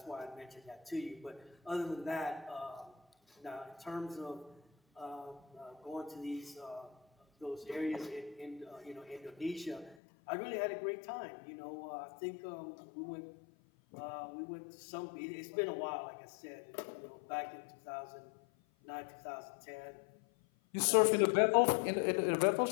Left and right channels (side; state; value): right; drops out; at 10.0 s